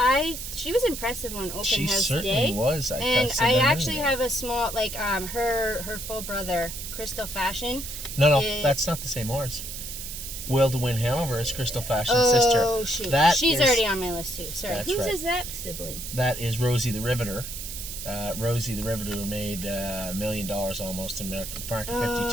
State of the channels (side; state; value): right; noise; hiss, 8 dB below the sound